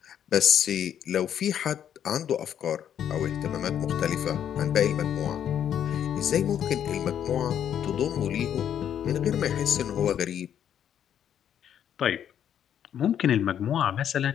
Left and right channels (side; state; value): right; quieter; 9.5 dB